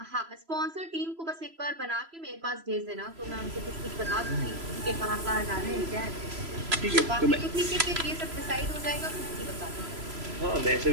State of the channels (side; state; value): left; late; 3.0 ms